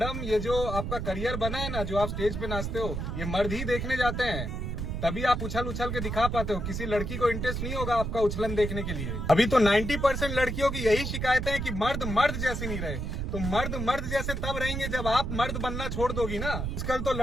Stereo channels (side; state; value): right; noise; rumble, 3 dB below the sound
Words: ये जो आपका करियर बना है ना, जो आप स्टेज पे नाचते हो, ये मर्द ही देखने जाते हैं। तभी आप उछल उछल के दिखा पाते हो। किसी लड़की को इंटरेस्ट नहीं होगा आपका उछलन देखने के लिए। अभी तो 90% लड़कियों की यही शिकायतें हैं कि मर्द मर्द जैसे नहीं रहे। तो मर्द मर्द जैसे तब रहेंगे जब आप मर्द बनना छोड़ दोगी ना। आजकल तो